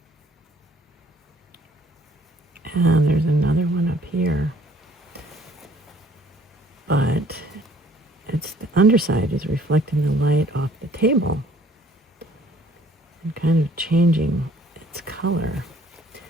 And there's another one up here, but it's the underside is reflecting the light off the table and kind of changing its color.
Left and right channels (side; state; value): both; normal; correlation 0.58